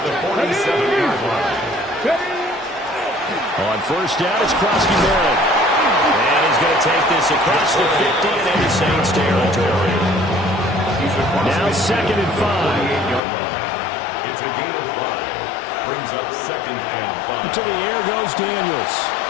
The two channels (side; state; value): right; drops out; at 13.2 s